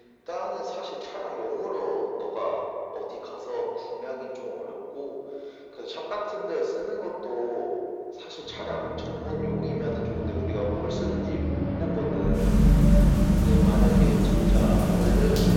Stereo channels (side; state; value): both; identical; correlation 1.00